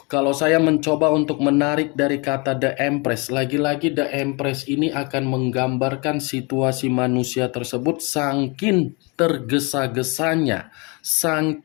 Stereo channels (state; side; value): quieter; right; 29.9 dB